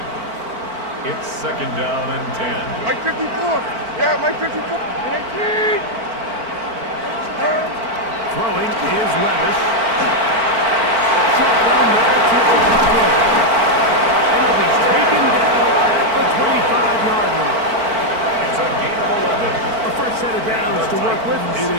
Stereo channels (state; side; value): late; left; 4.5 ms